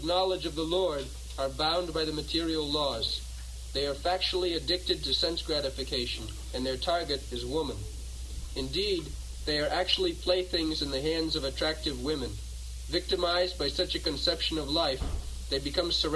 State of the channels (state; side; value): identical; both; correlation 1.00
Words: knowledge of the Lord are bound by the material laws. They are factually addicted to sense gratification, and their target is woman. Indeed, they are actually playthings in the hands of attractive women. Victimized by such a conception of life, they become